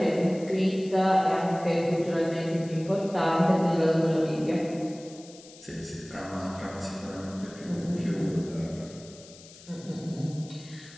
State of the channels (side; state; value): left; noise; hiss, 20 dB below the sound